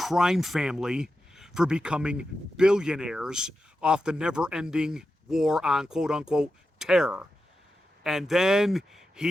family for becoming billionaires off the never-ending war on quote-unquote terror. And then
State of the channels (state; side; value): normal; both; correlation 0.90